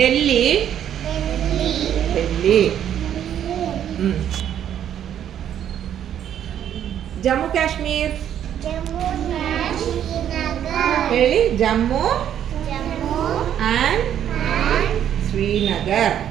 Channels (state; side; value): quieter; left; 10.0 dB